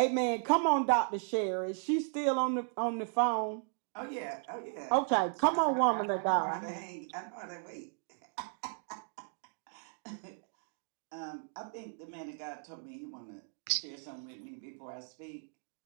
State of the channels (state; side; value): silent; left; 54 dB below the other